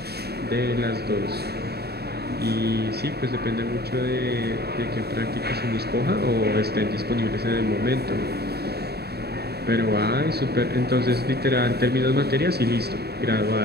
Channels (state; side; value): late; left; 0.47 ms